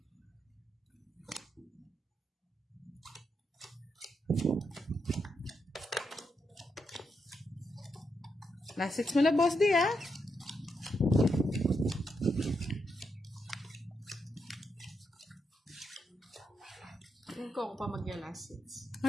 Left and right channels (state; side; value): normal; both; correlation 0.82